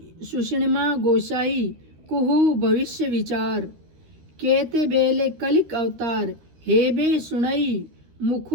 सुषिणमा गोसाई कुहू भविष्य विचार, केते बेले कलिक अवतार हेबे सुनई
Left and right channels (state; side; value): late; left; 13 ms